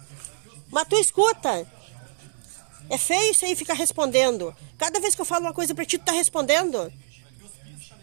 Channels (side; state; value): left; silent; digital silence